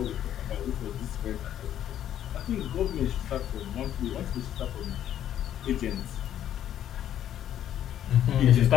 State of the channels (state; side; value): quieter; right; 10.9 dB